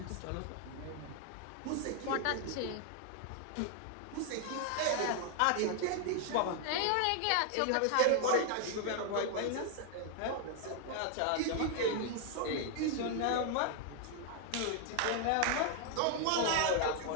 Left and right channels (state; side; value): different; both; correlation 0.00